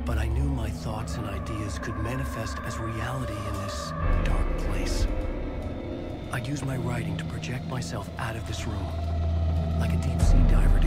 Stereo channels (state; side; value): identical; both; correlation 1.00